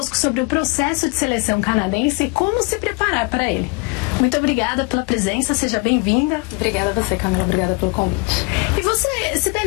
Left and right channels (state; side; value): quieter; right; 28.7 dB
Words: sobre o processo de seleção canadense e como se preparar para ele. Muito obrigada pela presença, seja bem-vinda. Obrigada a você, Camila, obrigada pelo convite. E você,